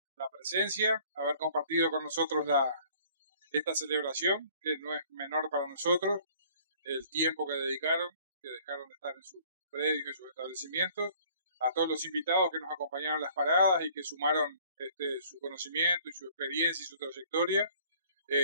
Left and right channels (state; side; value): inverted; both; correlation -0.55